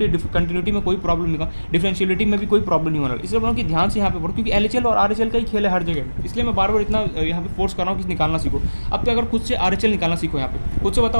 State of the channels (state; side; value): inverted; both; correlation -1.00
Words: में कोई प्रॉब्लम नहीं होगा, डिफरेंशियलिटी में भी कोई प्रॉब्लम नहीं होना। इसलिए बोल रहा हूँ कि ध्यान से यहाँ पे पढ़ो, क्योंकि LHL और RHL का ही खेल है हर जगह, इसलिए मैं बार बार इतना यहाँ पे फोर्स कर रहा हूँ कि निकालना सीखो। अब तो अगर खुद से RHL निकालना सीखो, यहाँ पे खुद से